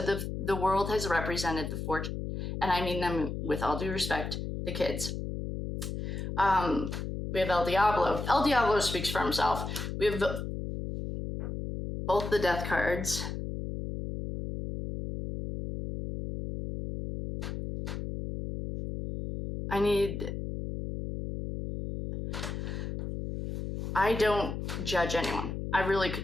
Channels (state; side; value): noise; left; hum, 5 dB below the sound